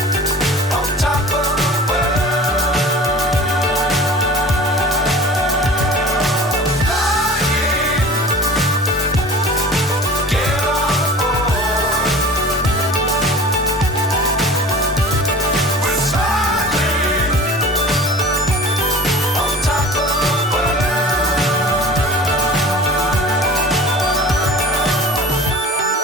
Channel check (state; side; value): normal; both; correlation 0.41